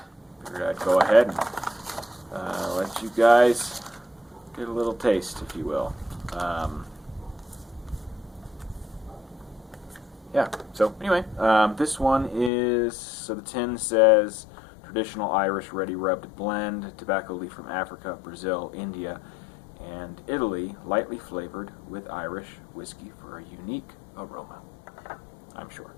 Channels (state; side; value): drops out; right; at 12.5 s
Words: figured I'd go ahead and let you guys get a little taste, if you will. Yeah, so anyway, this one is, so the tin says traditional Irish ready rubbed blend, tobacco leaf from Africa, Brazil, India, and Italy, lightly flavored with Irish whiskey for a unique aroma, I'm sure.